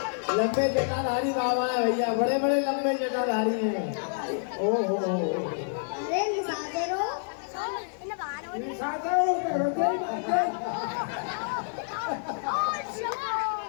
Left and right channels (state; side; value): silent; right; 58 dB below the other